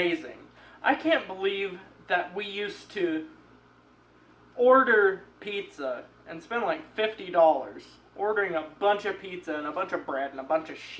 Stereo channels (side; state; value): both; identical; correlation 1.00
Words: I can't believe that we used to order pizza and spend like $50 ordering a bunch of pizza and a bunch of bread and a bunch of